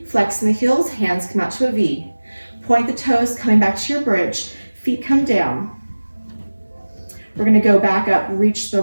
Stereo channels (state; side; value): inverted; both; correlation -1.00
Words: Flexing the heels, hands come out to a V. Point the toes, coming back to your bridge. Feet come down. We're gonna go back up, reach the